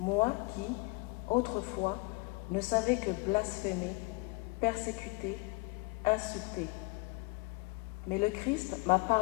qui, autrefois, ne savais que blasphémer, persécuter, insulter. Mais le Christ m'a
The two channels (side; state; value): right; quieter; 27.8 dB